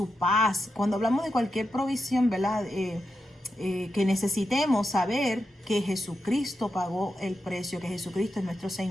paz, cuando hablamos de cualquier provisión, ¿verdad?, que necesitemos, saber que Jesucristo pagó el precio, que Jesucristo es nuestro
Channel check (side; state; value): both; normal; correlation 0.87